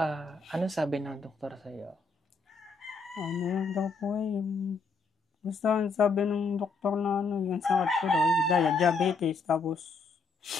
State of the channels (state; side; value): quieter; right; 4.2 dB